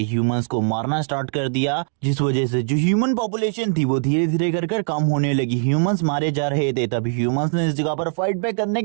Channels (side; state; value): left; silent; digital silence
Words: ह्यूमंस को मारना स्टार्ट कर दिया, जिस वजह से जो ह्यूमन पॉपुलेशन थी वो धीरे धीरे कर कम होने लगी। ह्यूमंस मारे जा रहे थे, तभी ह्यूमंस ने इस जगह पर फाइट बैक करने